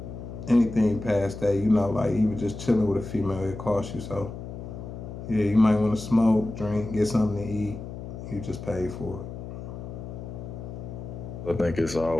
anything past that, like even just chilling with a female, it costs you. So yeah, you might want to smoke, drink, get something to eat. You just pay for it. I think it's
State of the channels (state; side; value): noise; left; hum, 10 dB below the sound